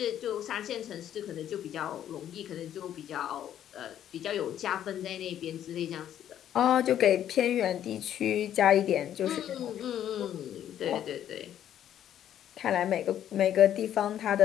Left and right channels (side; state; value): right; quieter; 10.7 dB